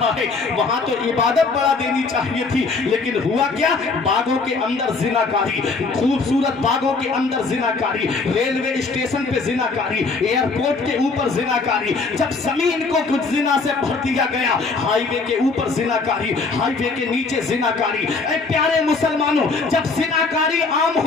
है। वहां तो इबादत बढ़ा देनी चाहिए थी, लेकिन हुआ क्या? बागों के अंदर जिनाकारी, खूबसूरत बागों के अंदर जिनाकारी, रेलवे स्टेशन पे जिनाकारी, एयरपोर्ट के ऊपर जिनाकारी, जब जमीन को कुछ जिना से भर दिया गया, हाईवे के ऊपर जिनाकारी, हाईवे के नीचे जिनाकारी। ऐ प्यारे मुसलमानों, जब जिनाकारी आम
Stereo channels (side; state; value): right; quieter; 4.1 dB